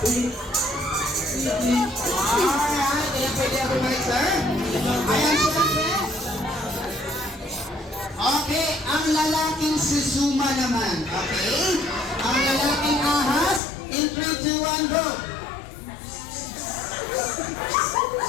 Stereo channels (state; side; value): drops out; right; at 13.6 s